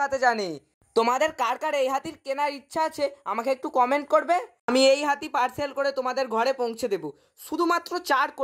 জানে। তোমাদের কার কার এই হাতির কেনার ইচ্ছা আছে আমাকে একটু কমেন্ট করবে, আমি এই হাতি পার্সেল করে তোমাদের ঘরে পৌঁছে দেবো। শুধুমাত্র 4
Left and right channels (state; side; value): identical; both; correlation 1.00